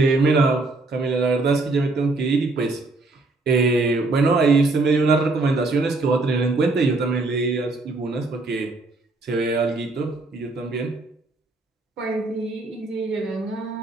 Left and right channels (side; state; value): left; quieter; 3.2 dB